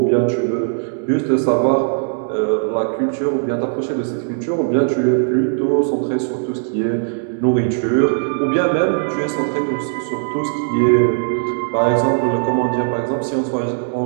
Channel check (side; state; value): left; silent; digital silence